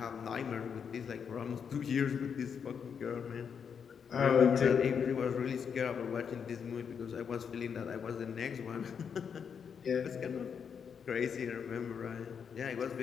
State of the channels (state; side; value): quieter; right; 6.9 dB